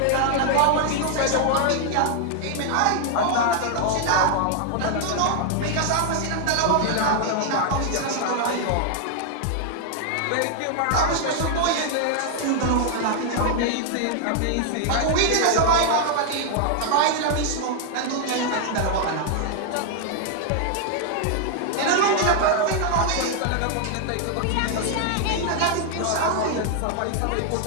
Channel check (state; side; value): different; both; correlation 0.00